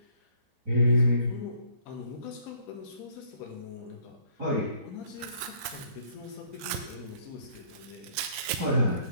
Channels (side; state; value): left; late; 4.0 ms